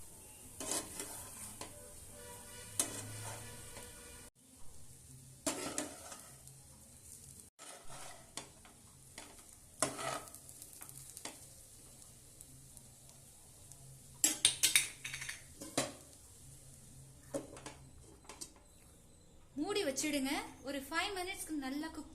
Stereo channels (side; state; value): both; identical; correlation 1.00